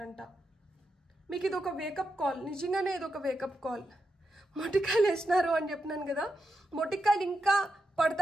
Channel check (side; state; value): both; normal; correlation 0.86